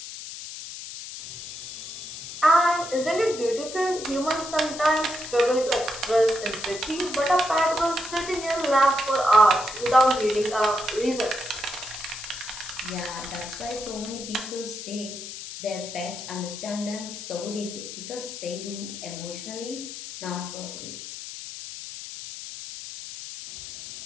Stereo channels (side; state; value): left; noise; hiss, 10 dB below the sound